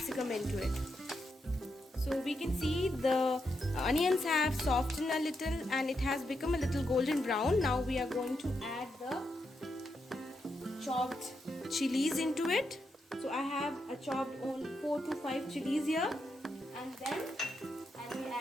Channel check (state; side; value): normal; both; correlation 0.83